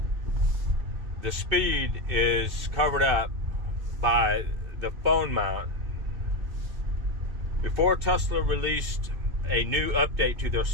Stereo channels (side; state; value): left; late; 2.6 ms